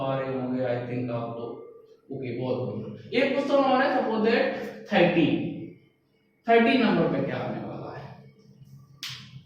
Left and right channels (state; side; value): identical; both; correlation 1.00